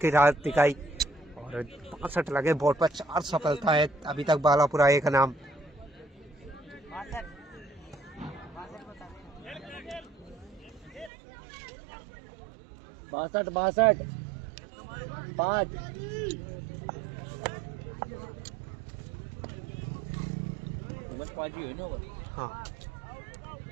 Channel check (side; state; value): left; drops out; at 11.1 s